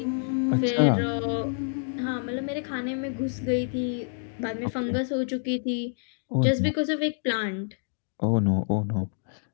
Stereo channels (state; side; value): silent; right; digital silence